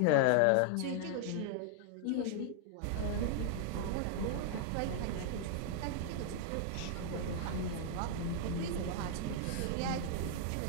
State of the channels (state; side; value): different; both; correlation 0.00